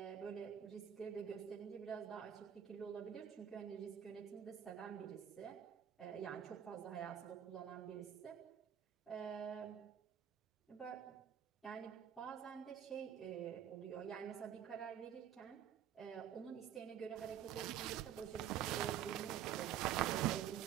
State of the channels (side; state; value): left; quieter; 9.7 dB